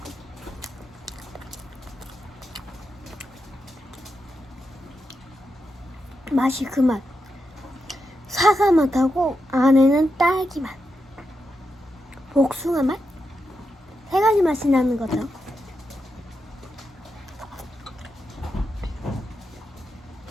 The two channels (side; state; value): both; normal; correlation 0.86